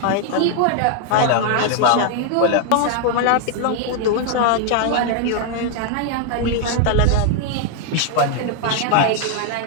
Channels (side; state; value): both; different; correlation 0.00